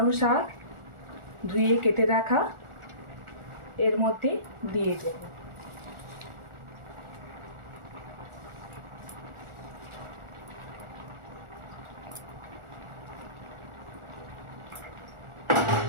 শাক ধুয়ে কেটে রাখা এর মধ্যে দিয়ে দেব।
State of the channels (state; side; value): late; left; 1.4 ms